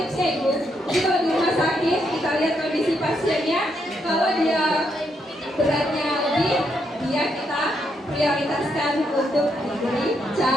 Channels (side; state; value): both; normal; correlation 0.78